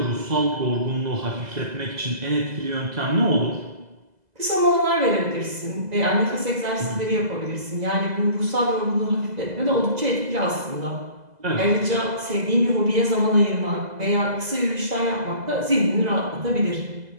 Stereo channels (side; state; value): left; late; 2.0 ms